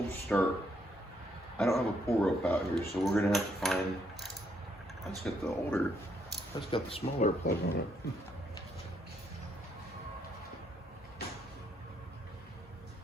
start. I don't have a pull rope out here, so we're gonna have to find, that's got the smaller plug on it.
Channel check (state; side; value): normal; both; correlation 0.73